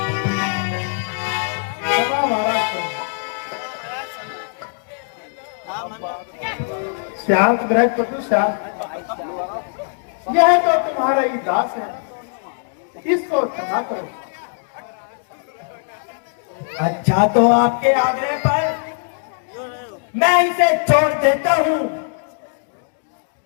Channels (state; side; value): silent; right; digital silence